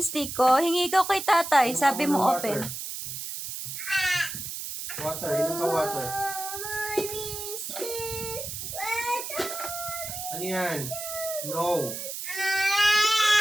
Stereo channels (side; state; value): right; noise; hiss, 7 dB below the sound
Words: Stiko. Hingi ka kay tatay. Sabi mo open. Water, inom ka water. Ano yan? No.